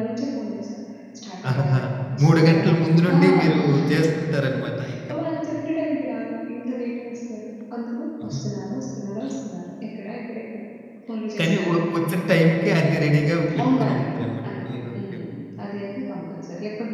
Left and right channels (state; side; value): identical; both; correlation 1.00